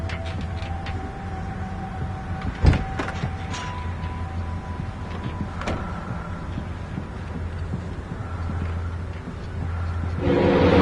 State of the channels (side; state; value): both; identical; correlation 1.00